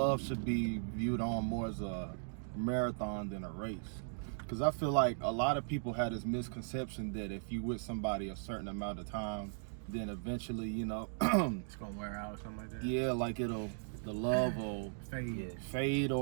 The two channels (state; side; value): silent; left; digital silence